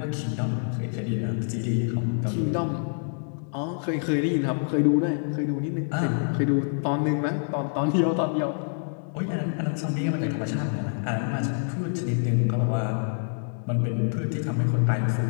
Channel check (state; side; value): silent; right; digital silence